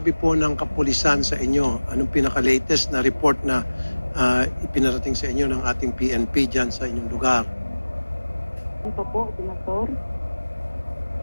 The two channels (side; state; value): both; inverted; correlation -1.00